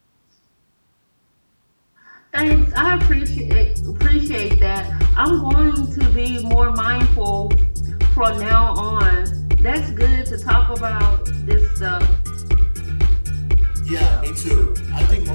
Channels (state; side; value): inverted; both; correlation -1.00